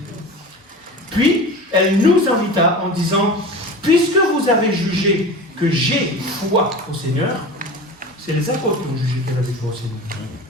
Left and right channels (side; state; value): both; normal; correlation 0.33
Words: Puis elle nous invita en disant, puisque vous avez jugé que j'ai foi au Seigneur, c'est les apôtres qui ont jugé qu'elle avait foi au Seigneur.